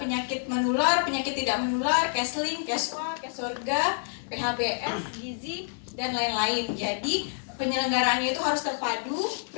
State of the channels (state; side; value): silent; right; digital silence